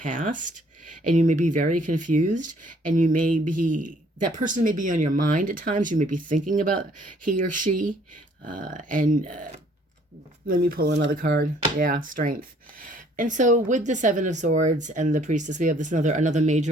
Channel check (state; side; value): normal; both; correlation 0.61